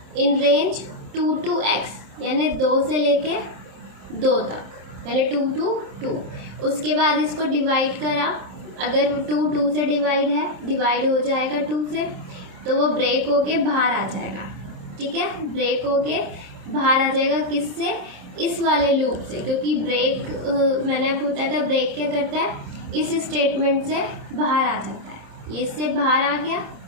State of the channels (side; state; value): left; late; 27 ms